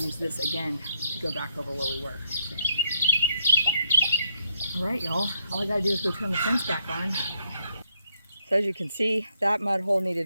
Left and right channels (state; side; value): inverted; both; correlation -0.76